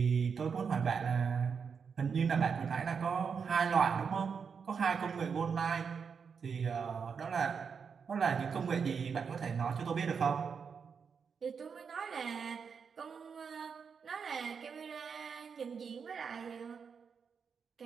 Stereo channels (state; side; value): quieter; left; 6.2 dB